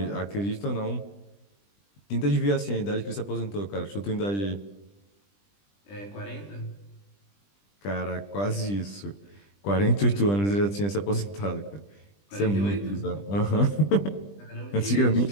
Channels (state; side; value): late; right; 20 ms